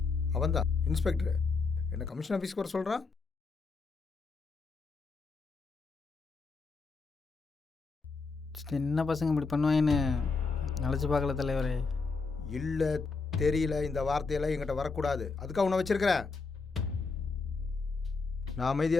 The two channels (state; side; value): quieter; right; 4.3 dB